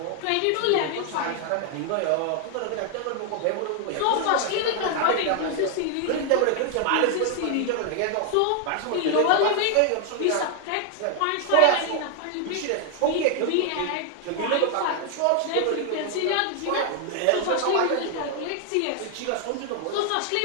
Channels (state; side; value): different; both; correlation 0.00